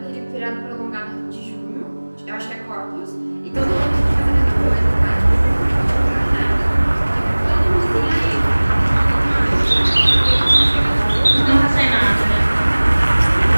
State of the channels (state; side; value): inverted; both; correlation -1.00